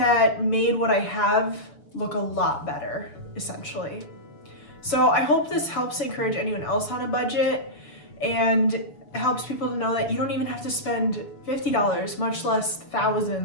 made what I have look a lot better, essentially. So I hope this helps encourage anyone else on a budget and helps people to know that you don't even have to spend $50, much less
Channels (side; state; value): right; late; 6.9 ms